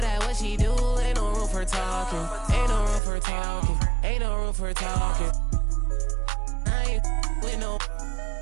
at what she do, ain't no room for talking. Ain't no room for talking. Ain't no room for talking. I ain't with no.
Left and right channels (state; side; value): drops out; left; at 3.0 s